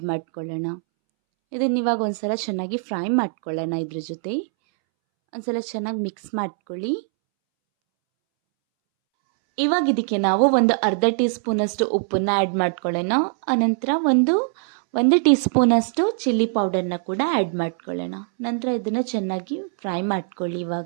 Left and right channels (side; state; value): left; silent; 64 dB below the other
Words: ಮಾಡ್ಕೊಳ್ಳೋಣ. ಇದನ್ನು ಇವಾಗ ಒಂದ್ಸಲ ಚೆನ್ನಾಗಿ ಫ್ರೈ ಮಾಡ್ಕೊಳ್ಳೋಣ. ಇದ್ರ ಜೊತೆ ಒಂದ್ಸಲ ಚೆನ್ನಾಗಿ ಮಿಕ್ಸ್ ಮಾಡ್ಕೊಳ್ಳಿ. ಇವಾಗ ಇದಕ್ಕೆ ನಾವು ಒಂದು ಅರ್ಧ ಟೀ ಸ್ಪೂನ್ ಅಷ್ಟು ಉಪ್ಪನ್ನ ಆ್ಯಡ್ ಮಾಡ್ಕೊಳ್ಳೋಣ. ಅನಂತರ ಒಂದು ಟೀ ಸ್ಪೂನ್ ಅಷ್ಟು ಚಿಲ್ಲಿ ಪೌಡರ್ನ ಕೂಡ ಆ್ಯಡ್ ಮಾಡ್ಕೊಳ್ಳೋಣ. ನಂತರ ಇದನ್ನು ಚೆನ್ನಾಗಿ ಫ್ರೈ ಮಾಡ್ಕೊಳ್ಳಿ.